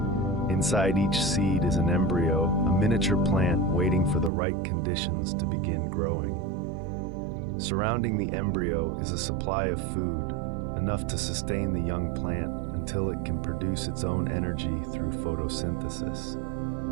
Inside each seed is an embryo, a miniature plant waiting for the right conditions to begin growing. Surrounding the embryo is a supply of food, enough to sustain the young plant until it can produce its own energy through photosynthesis.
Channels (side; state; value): left; drops out; at 4.3 s